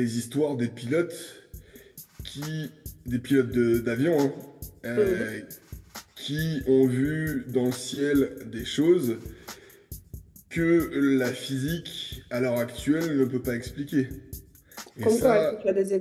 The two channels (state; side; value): identical; both; correlation 1.00